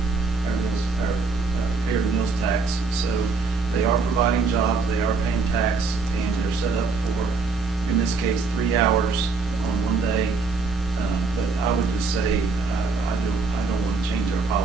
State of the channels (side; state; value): left; quieter; 4.3 dB